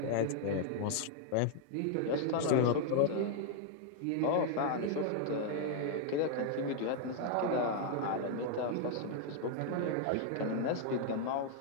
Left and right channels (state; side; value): different; both; correlation 0.00